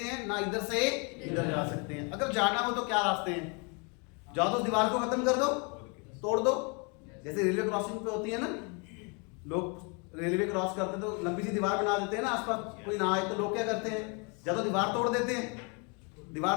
हैं, ना इधर से इधर जा सकते हैं। अगर जाना हो तो क्या रास्ते हैं? जाओ तो दीवार को खत्म कर दो, तोड़ दो। जैसे रेलवे क्रॉसिंग पे होती है ना, लोग रेलवे क्रॉस करते तो लंबी सी दीवार बना देते हैं ना, आसपास कोई ना आए तो लोग क्या करते हैं? या तो दीवार तोड़ देते हैं, दीवार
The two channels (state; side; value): quieter; right; 33.8 dB